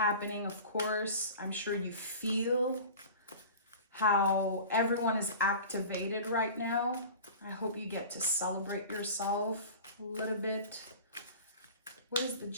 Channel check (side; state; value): both; inverted; correlation -0.38